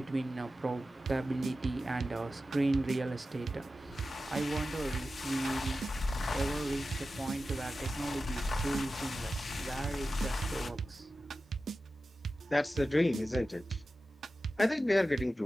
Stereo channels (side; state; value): both; normal; correlation 0.93